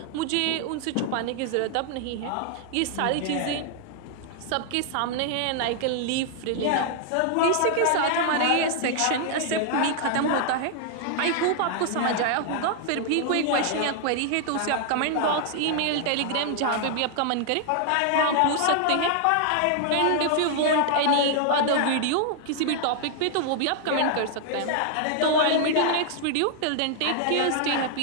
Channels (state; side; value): different; both; correlation 0.00